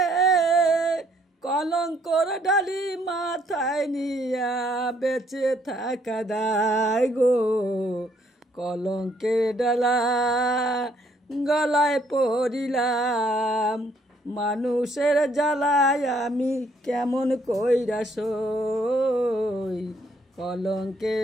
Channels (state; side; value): normal; both; correlation 0.67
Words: কলঙ্কর ডালি মাথায় নিয়া বেঁচে থাকা দায় গো। কলঙ্কের ডালা গলায় পড়িলাম, মানুষের জ্বালায় আমি কেমন কইরা সই।